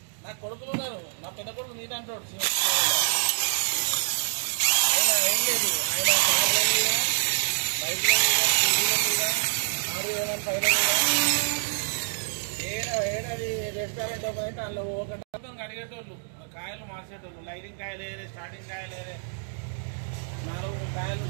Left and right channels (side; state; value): left; silent; digital silence